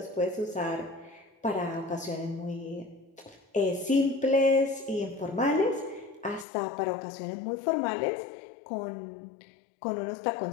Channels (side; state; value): right; drops out; at 6.5 s